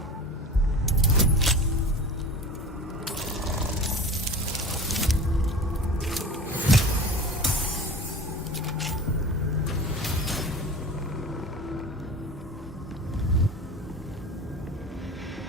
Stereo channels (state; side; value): normal; both; correlation 0.36